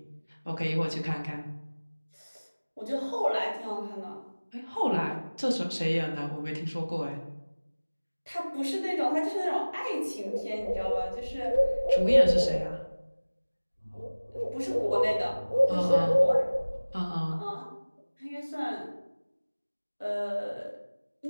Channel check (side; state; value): both; inverted; correlation -1.00